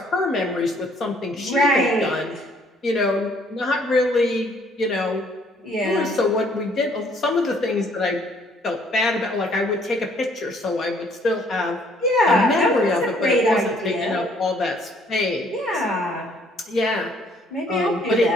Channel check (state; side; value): normal; both; correlation 0.63